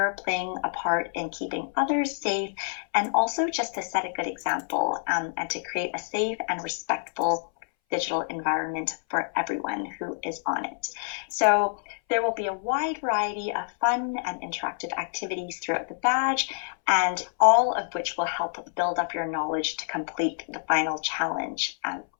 playing a part in keeping others safe, and also just to set a good example and to create a safe and respectful digital environment for everyone who is on it. So there will be a wide variety of fun and interactive activities throughout the badge, and all of which will help build up your knowledge to complete the final challenge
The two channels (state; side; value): silent; right; 60 dB below the other